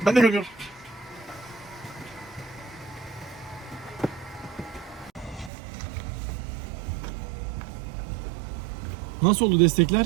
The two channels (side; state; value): left; drops out; at 5.5 s